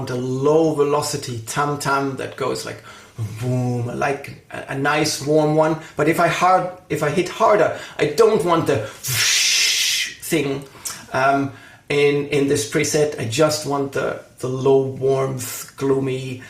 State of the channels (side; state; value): both; identical; correlation 1.00